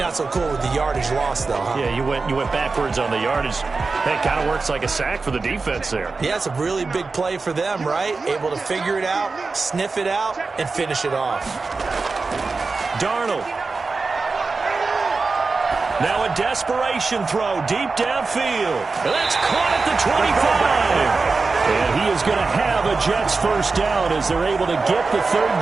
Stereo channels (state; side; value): quieter; left; 4.1 dB